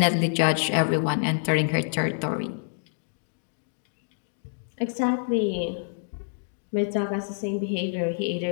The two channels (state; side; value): silent; right; digital silence